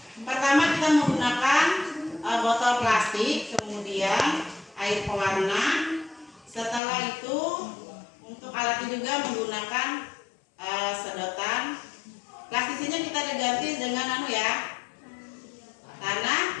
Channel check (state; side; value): drops out; right; at 6.8 s